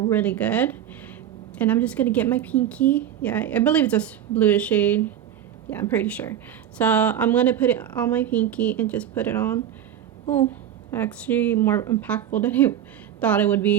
good. And I'm just gonna get my pinky. Yeah, I believe it's a bluish shade. Yeah, I'm pretty sure. So I'm gonna put it on my pinky and just put it on. Oh, actually more impactful than I thought it would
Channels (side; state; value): left; quieter; 10.3 dB